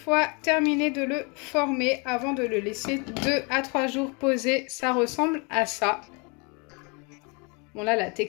terminé de le former. Avant de le laisser 2 à 3 jours poser, ça ressemble à ça. Bon là la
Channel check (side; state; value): right; quieter; 32.0 dB